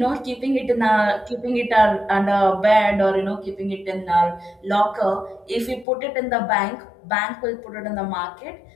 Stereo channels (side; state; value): right; drops out; at 5.9 s